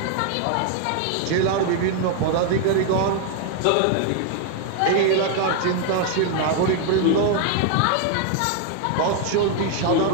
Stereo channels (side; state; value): both; different; correlation 0.00